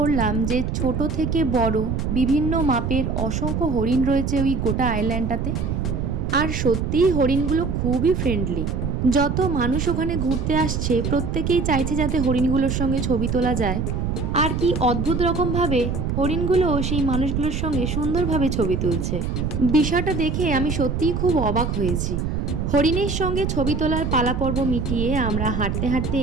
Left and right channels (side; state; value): right; noise; rumble, 1 dB below the sound